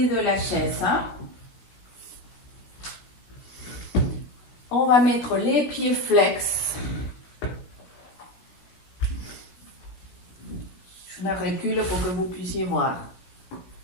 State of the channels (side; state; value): right; late; 16 ms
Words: de la chaise. On va mettre les pieds flex. Je me recule pour que vous puissiez voir.